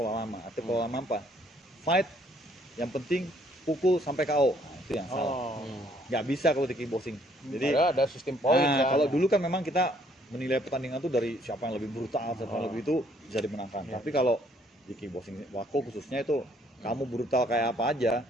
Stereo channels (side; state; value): both; normal; correlation 0.65